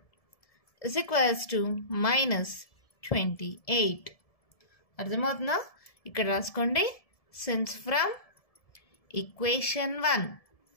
is equals to -28. అర్థమవుతుందా? ఇక్కడ రాసుకోండి, సిన్స్ ఫ్రమ్ ఈక్వేషన్ 1.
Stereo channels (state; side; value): late; right; 1.7 ms